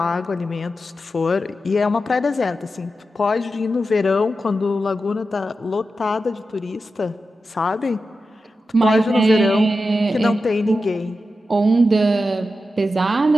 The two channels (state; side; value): normal; both; correlation 0.91